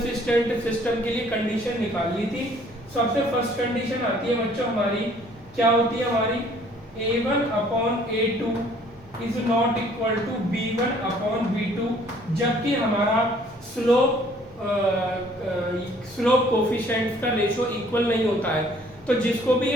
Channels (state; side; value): normal; both; correlation 0.58